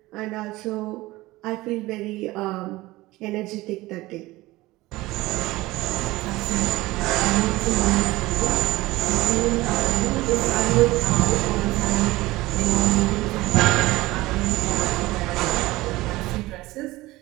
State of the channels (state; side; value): quieter; left; 19.1 dB